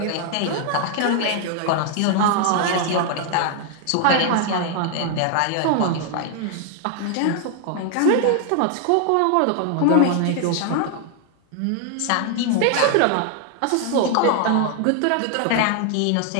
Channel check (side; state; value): both; different; correlation 0.00